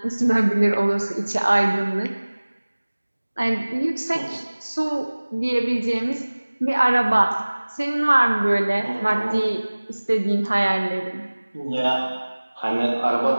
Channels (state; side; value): inverted; both; correlation -1.00